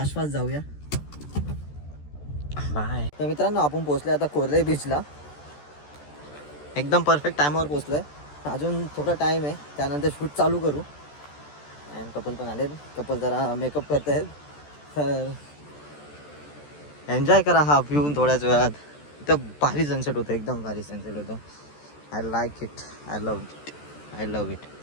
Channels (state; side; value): late; right; 14 ms